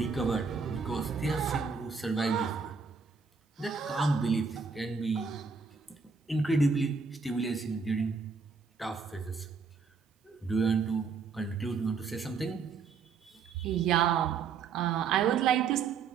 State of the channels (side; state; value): left; quieter; 5.3 dB